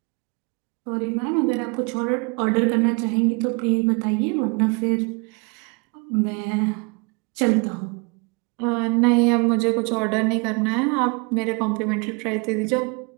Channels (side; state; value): left; quieter; 31.5 dB